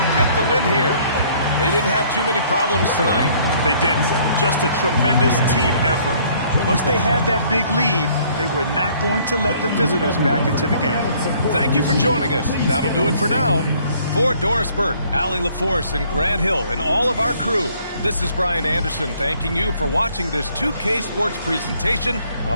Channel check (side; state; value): both; inverted; correlation -0.61